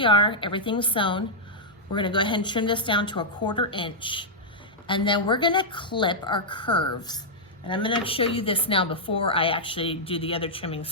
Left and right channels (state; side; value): normal; both; correlation -0.08